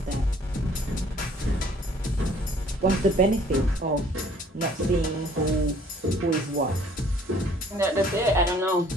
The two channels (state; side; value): normal; both; correlation 0.57